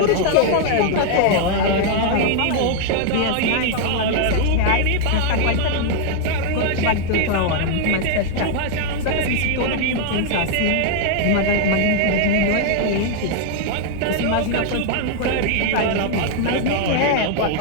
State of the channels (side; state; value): both; different; correlation 0.00